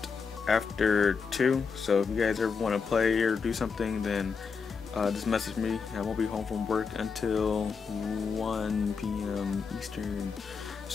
after 2, so if you guys ever want to play or do something, then just message me. I won't be home from work until 1 p.m. Eastern.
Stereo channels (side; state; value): right; quieter; 5.5 dB